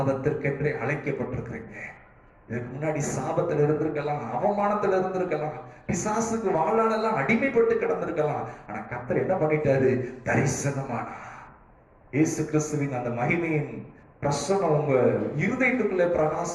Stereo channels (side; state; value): both; identical; correlation 1.00